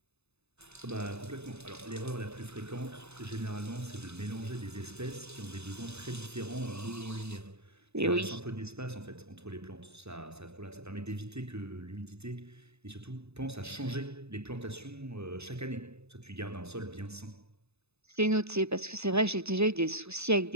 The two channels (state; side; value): late; left; 0.80 ms